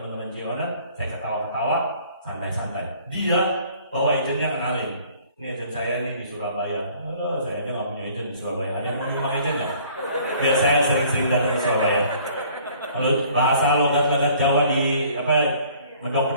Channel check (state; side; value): inverted; both; correlation -0.56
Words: Jiona. Saya ketawa-ketawa, santai-santai. Dia bawa agennya kenalin. Ini agent saya nih di Surabaya. Saya aja nggak punya agent di Surabaya. Ada yang mau nyumbang agent nggak? Biar saya sering-sering datang ke Surabaya. Kalau bahasa logat-logat Jawa di